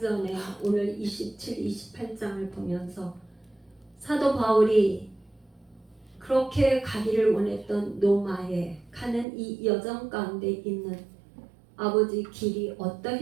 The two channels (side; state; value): left; drops out; at 9.2 s